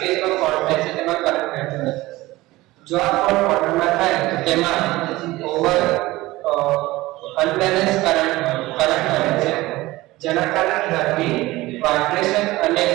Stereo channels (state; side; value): quieter; left; 18.8 dB